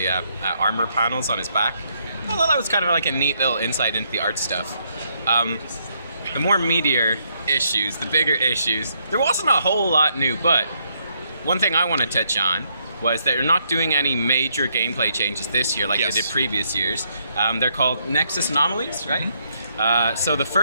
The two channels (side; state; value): both; inverted; correlation -0.74